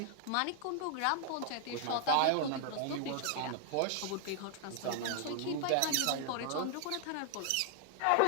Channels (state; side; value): different; both; correlation 0.00